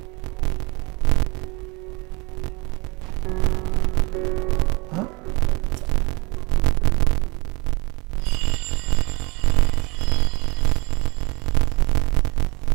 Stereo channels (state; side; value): quieter; left; 26.8 dB